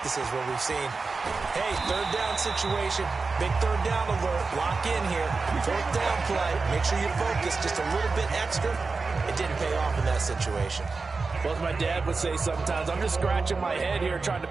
where we've seen, hey, 3rd down situation, Big third down alert. Lock in here. Fourth down play. Make sure you focus just a little bit extra. It didn't pay off in that situation. Well, as my dad would say sometimes, I'm just scratching my head here trying to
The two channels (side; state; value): left; quieter; 4.2 dB